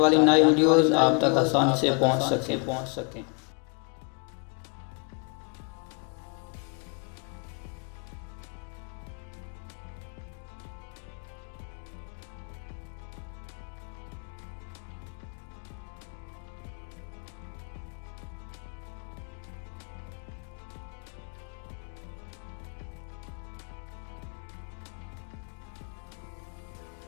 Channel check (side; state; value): right; quieter; 37.0 dB